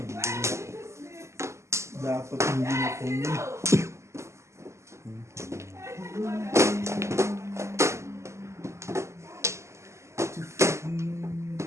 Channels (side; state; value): left; late; 0.13 ms